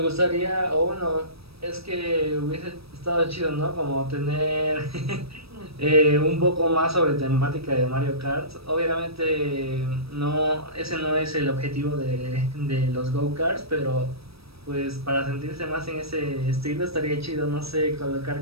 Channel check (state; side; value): late; left; 0.77 ms